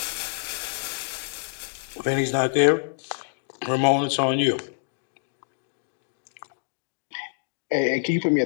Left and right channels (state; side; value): silent; right; digital silence